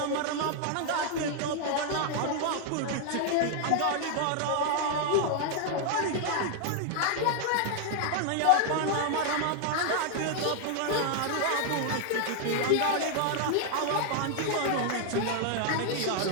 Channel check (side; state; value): both; different; correlation 0.00